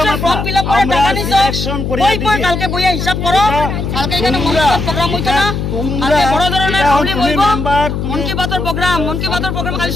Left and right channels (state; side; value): noise; left; hum, 3 dB below the sound